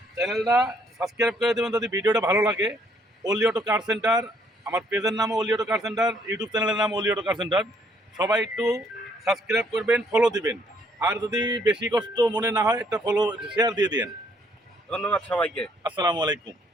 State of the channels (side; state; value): both; normal; correlation 0.66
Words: চ্যানেলটা সাবস্ক্রাইব করে দেবেন যদি ভিডিওটা ভালো লাগে ওলি অটো কার সেন্টার আমার পেজের নাম ওলি অটো কার সেন্টার ইউটিউব চ্যানেলের নাম ওলি অটো কার সেন্টার সবাই একটু সাবস্ক্রাইব করবেন ফলো দিবেন আর যদি বেশি কষ্ট মনে না হয় একটা ফলো শেয়ার দিয়ে দিন ধন্যবাদ সবাইকে আসসালামু আলাইকুম